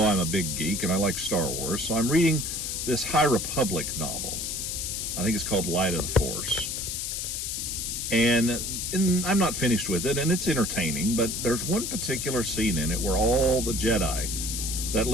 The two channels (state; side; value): noise; left; hiss, 3 dB below the sound